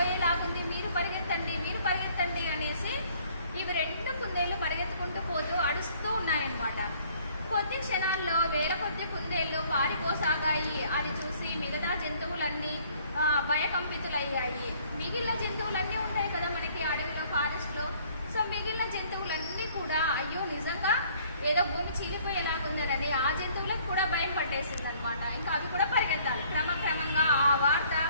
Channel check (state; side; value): inverted; both; correlation -0.59